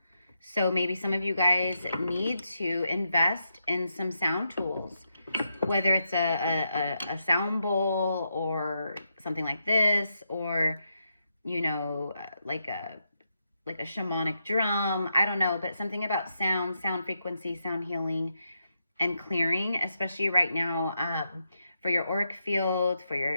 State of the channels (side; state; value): both; inverted; correlation -0.83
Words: So maybe some of you guys need to invest in some sound tools, whether it's a sound bowl or something like this, or, like a shamanic drum. I don't know, but something about sound frequency, sound healing and clearing, especially right now, for your auric field, for